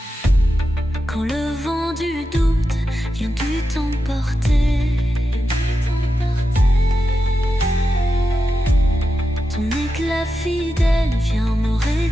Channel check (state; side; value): normal; both; correlation 0.89